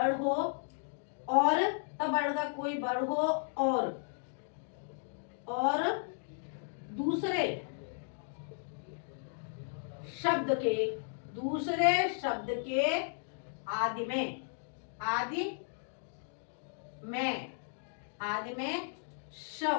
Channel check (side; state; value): right; silent; digital silence